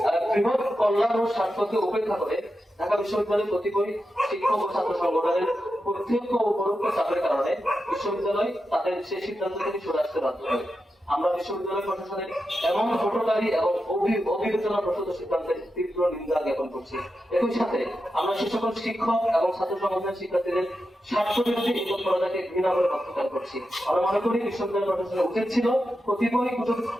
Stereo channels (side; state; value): both; normal; correlation 0.89